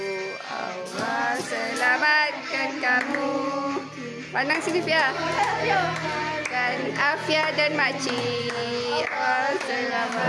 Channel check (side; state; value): both; identical; correlation 1.00